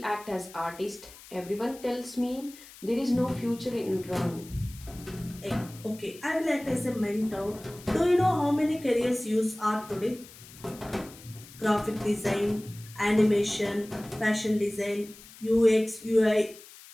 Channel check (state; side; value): noise; left; hiss, 19 dB below the sound